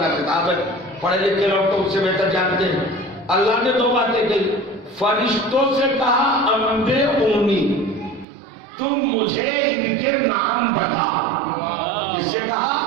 خطاب ہے، پڑھے لکھے لوگ تو اس سے بہتر جانتے ہیں. اللہ نے 2 باتیں کہی. فرشتوں سے کہا انبئونی، تم مجھے ان کے نام بتاؤ. کس سے کہا؟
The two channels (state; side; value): drops out; left; at 8.2 s